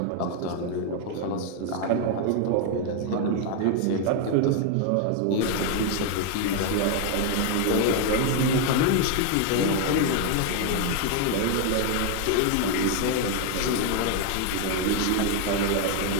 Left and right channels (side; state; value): both; different; correlation 0.01